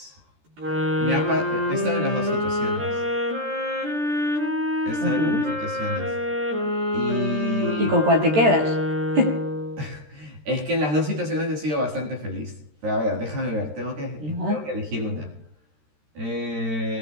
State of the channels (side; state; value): left; late; 13 ms